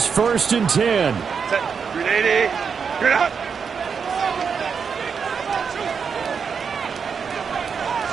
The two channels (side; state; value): left; quieter; 6.2 dB